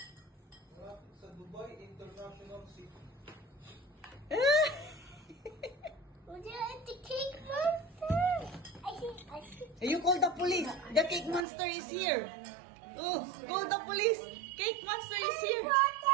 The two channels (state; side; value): drops out; left; at 11.5 s